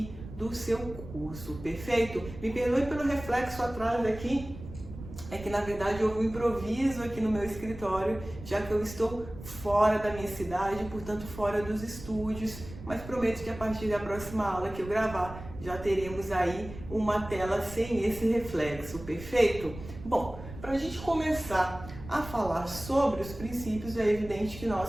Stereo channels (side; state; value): right; noise; rumble, 13 dB below the sound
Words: do seu curso. Perfeito? Me perdoe pelo reflexo atrás aqui, é que na verdade houve um improviso aqui no meu escritório, já que eu estou fora da minha cidade, portanto fora dos estúdios, mas prometo que a partir da próxima aula que eu gravar, já teremos aí uma tela sem esse reflexo. Perfeito? Bom, para a gente começar a falar sobre os princípios, é evidente que